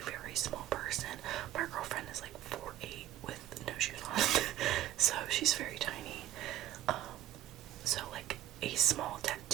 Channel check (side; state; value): left; quieter; 13.0 dB